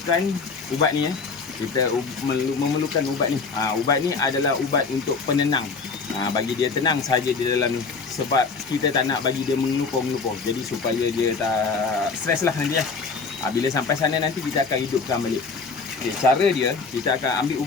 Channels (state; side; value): quieter; right; 4.7 dB